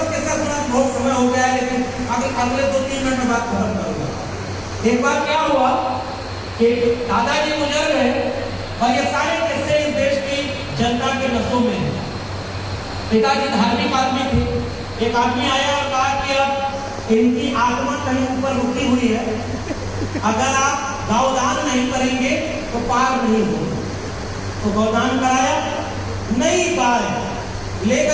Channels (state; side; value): identical; both; correlation 1.00